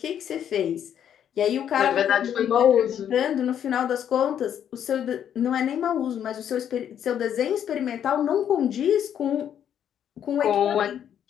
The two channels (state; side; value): quieter; right; 9.4 dB